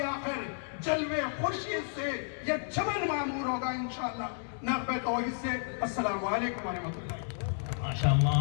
آخر جلوے خورشید سے یہ چمن معمور ہوگا انشاءاللہ. نغمے توحید سے. السلام علیکم ورحمۃ اللہ.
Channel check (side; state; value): right; silent; digital silence